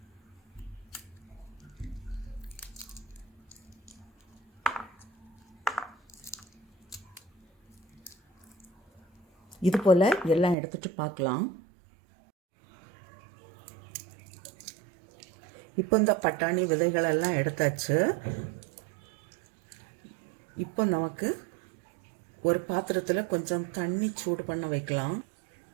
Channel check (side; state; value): left; drops out; at 10.6 s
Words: இது போல் எல்லாம் எடுத்துகிட்டு பார்க்கலாம். இப்போ இந்த பட்டாணி விதைகளெல்லாம் எடுத்தாச்சு. இப்போ நமக்கு ஒரு பாத்திரத்தில் கொஞ்சம் தண்ணி சூடு பண்ண வைக்கலாம்.